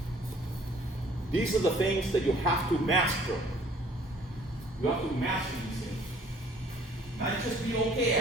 These are the things that you have to master. You have to master these things. Not just be okay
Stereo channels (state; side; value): normal; both; correlation 0.56